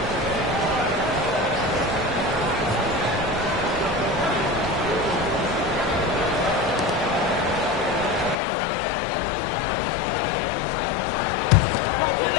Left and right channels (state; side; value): drops out; right; at 8.3 s